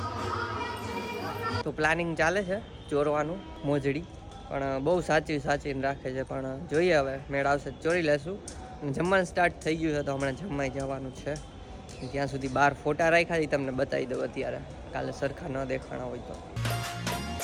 તો પ્લાનિંગ ચાલે છે ચોરવાનું મોજડી, પણ બહુ સાચવીને રાખે છે. પણ જોઈએ હવે મેળ આવશે ચોરી લેશું. અને જમવાનું સ્ટાર્ટ થઈ ગયું છે તો હમણાં જમવાઈ જવાનું છે. ત્યાં સુધી બહાર ફોટા રાખ્યા તમને બતાવી દઉં અત્યારે, કાલે સરખા ન દેખાણા હોય તો.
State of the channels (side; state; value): both; identical; correlation 1.00